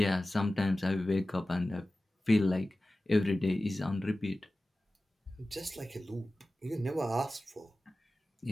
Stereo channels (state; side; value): normal; both; correlation 0.96